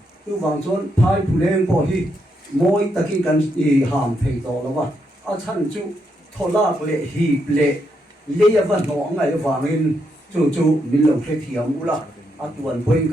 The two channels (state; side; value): normal; both; correlation 0.79